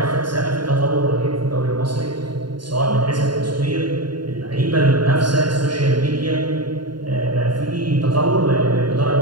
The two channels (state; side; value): late; left; 0.72 ms